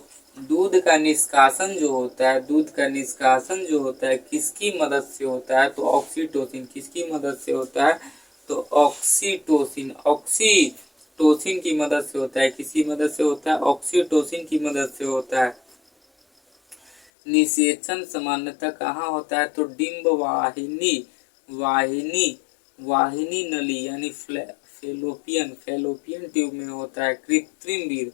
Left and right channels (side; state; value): right; drops out; at 17.0 s